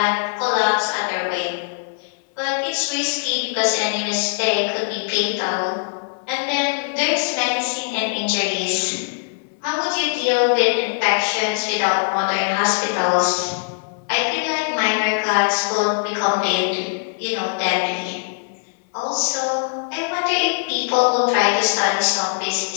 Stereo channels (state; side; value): silent; right; 61 dB below the other